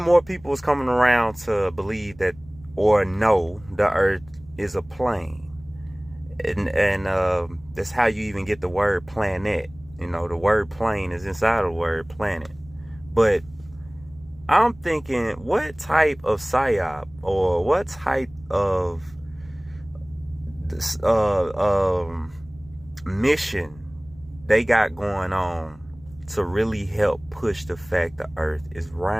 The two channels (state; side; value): noise; right; rumble, 22 dB below the sound